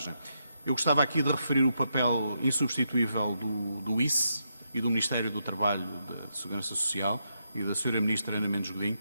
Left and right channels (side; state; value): both; inverted; correlation -0.81